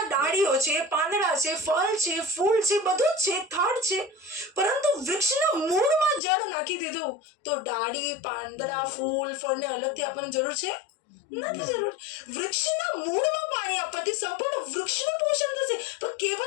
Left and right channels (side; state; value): right; drops out; at 6.2 s